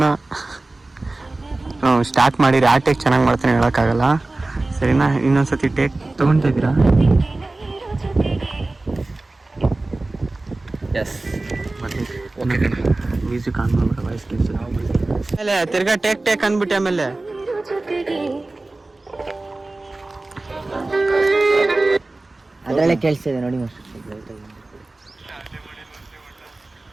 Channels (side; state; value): left; quieter; 3.0 dB